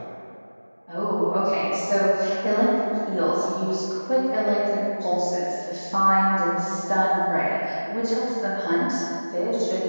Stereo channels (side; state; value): both; inverted; correlation -1.00